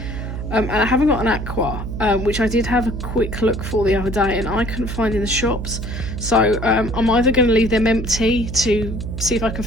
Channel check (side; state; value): right; noise; hum, 6 dB below the sound